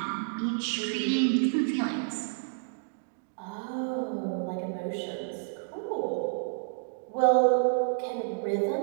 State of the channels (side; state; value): left; silent; digital silence